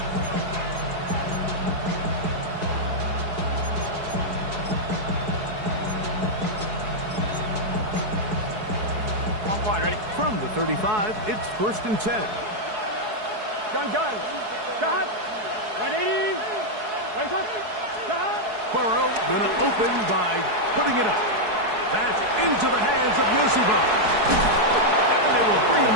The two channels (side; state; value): left; late; 4.7 ms